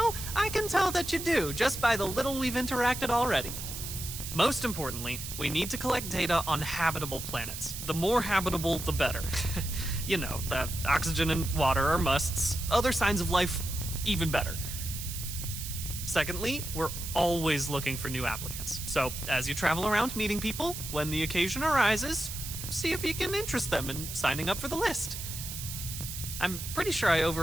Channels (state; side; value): noise; right; hiss, 7 dB below the sound